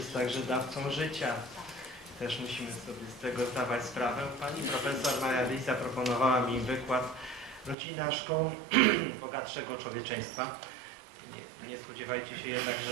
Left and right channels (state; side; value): drops out; left; at 7.8 s